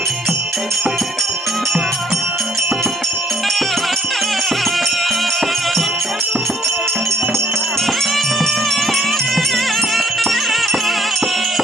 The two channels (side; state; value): both; normal; correlation 0.63